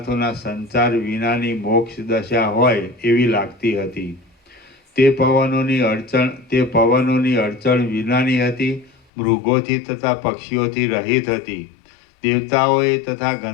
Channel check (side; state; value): right; drops out; at 8.9 s